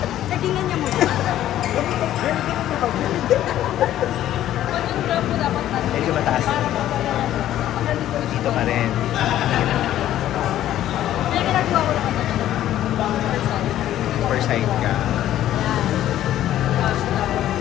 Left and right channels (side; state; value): right; quieter; 12.6 dB